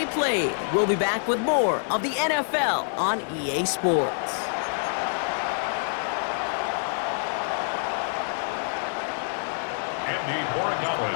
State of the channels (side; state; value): right; silent; 61 dB below the other